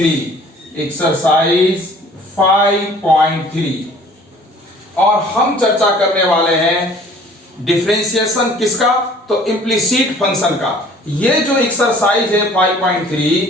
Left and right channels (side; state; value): both; normal; correlation 0.52